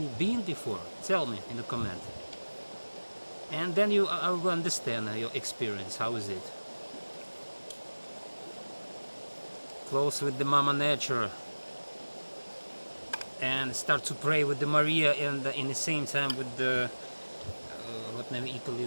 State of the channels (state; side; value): inverted; both; correlation -1.00